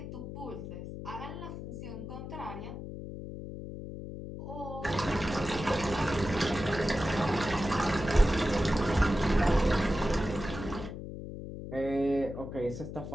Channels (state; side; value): noise; left; hum, 9 dB below the sound